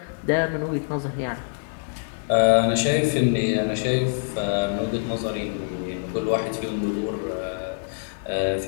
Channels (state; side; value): silent; right; digital silence